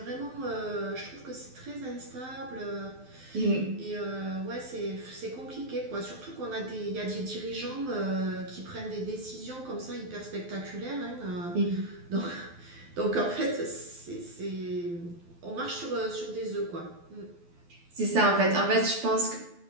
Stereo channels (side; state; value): left; late; 12 ms